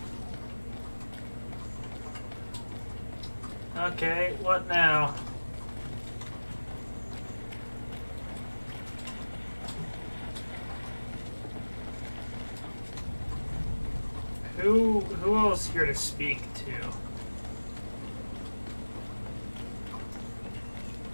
Okay, what now? Who else here to speak to?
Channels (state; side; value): inverted; both; correlation -1.00